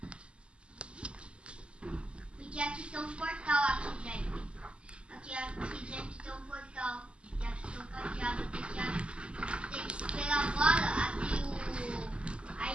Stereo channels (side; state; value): left; late; 0.054 ms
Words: Porque aqui tem um portal aqui dentro. Aqui dentro tem um portal. E aqui tem um cadeado. Tem que esperar agora abrir a